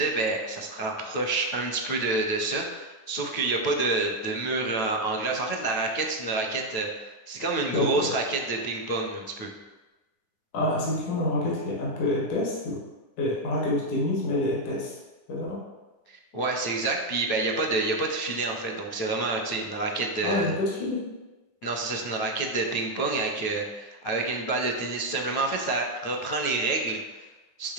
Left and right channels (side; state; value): right; late; 9.2 ms